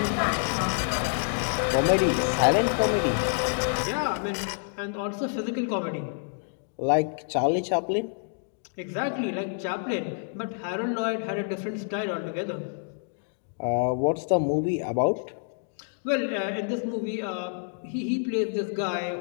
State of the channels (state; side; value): silent; right; digital silence